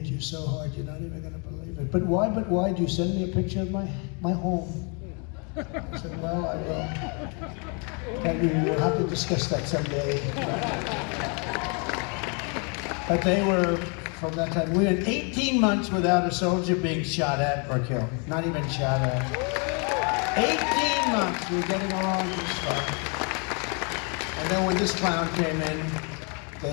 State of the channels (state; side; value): quieter; right; 35.7 dB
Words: you so hard, you're not even going to believe it. But why? Do you send me a picture of my home? I said, well, I will. And we'll have to discuss that someday. But they were, from that time, we went 18 months without a soldier being shot at or killed. Not even shot at. 18 months, we were getting along just fine. And then when this clown came in, they